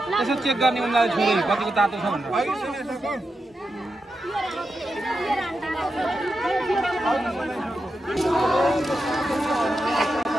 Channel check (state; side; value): normal; both; correlation 0.88